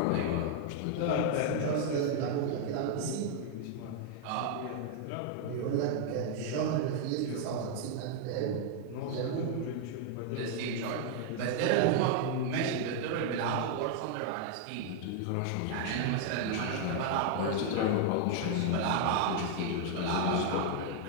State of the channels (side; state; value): both; different; correlation 0.00